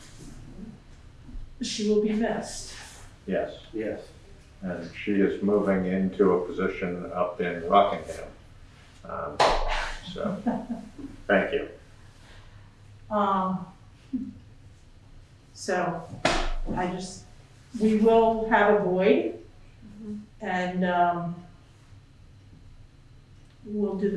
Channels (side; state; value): both; identical; correlation 1.00